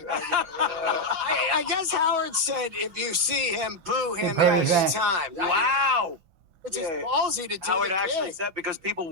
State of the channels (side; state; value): left; late; 6.1 ms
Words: I guess Howard said if you see him, boo him Yeah, every yeah. time. Wow. It's just ballsy to do Howard the actually gig. said, because people